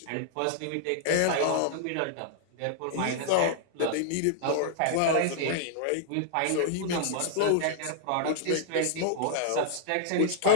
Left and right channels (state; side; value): different; both; correlation -0.01